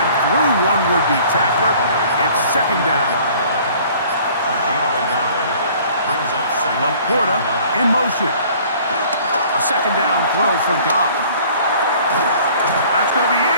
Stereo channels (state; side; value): inverted; both; correlation -0.53